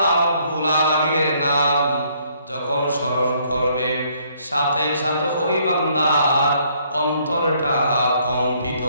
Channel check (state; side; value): inverted; both; correlation -0.66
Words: রাব্বুল আলামিনের নাম যখন স্মরণ করবে, সাথে সাথে ওই বান্দার অন্তরটা কম্পিত